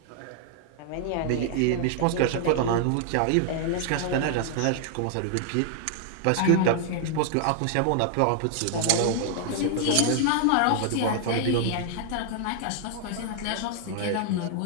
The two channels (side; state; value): both; different; correlation -0.01